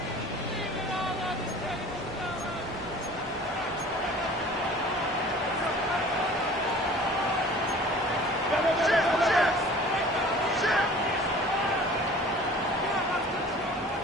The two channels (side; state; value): both; normal; correlation 0.45